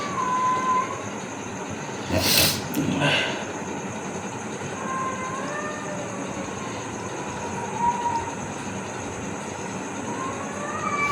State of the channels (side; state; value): both; identical; correlation 1.00